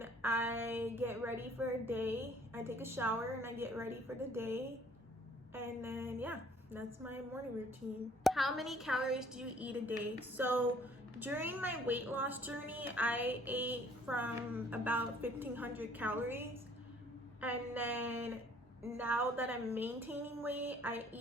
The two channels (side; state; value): both; normal; correlation 0.58